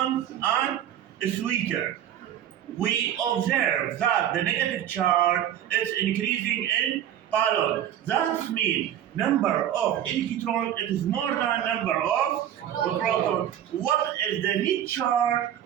and a sweeter, we observe that the negative charge is increasing in balloon. That means number of electron it is more than number of proton. What is the net charge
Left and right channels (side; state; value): left; quieter; 10.8 dB